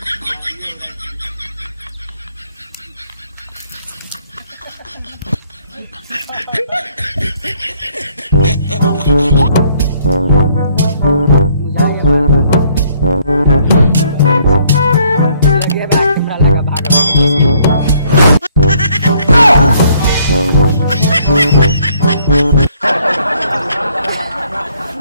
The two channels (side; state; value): both; inverted; correlation -0.64